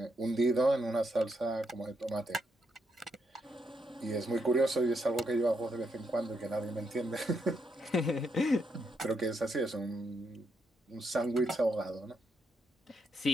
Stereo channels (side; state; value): both; normal; correlation 0.78